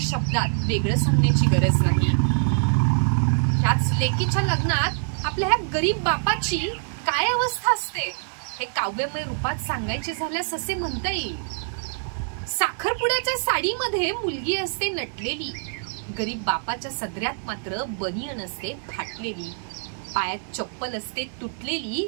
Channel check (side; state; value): left; silent; digital silence